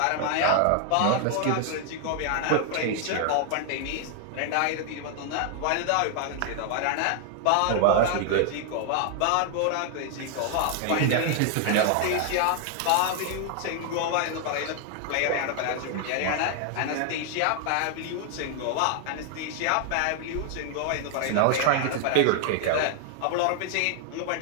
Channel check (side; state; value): both; different; correlation 0.00